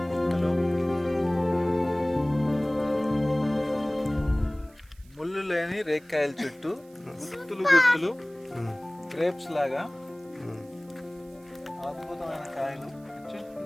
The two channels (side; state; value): right; noise; hiss, 29 dB below the sound